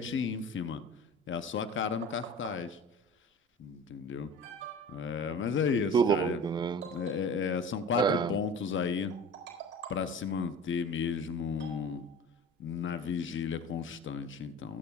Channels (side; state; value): both; normal; correlation 0.38